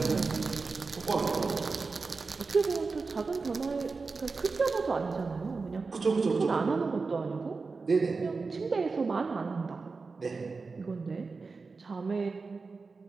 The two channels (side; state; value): left; quieter; 4.3 dB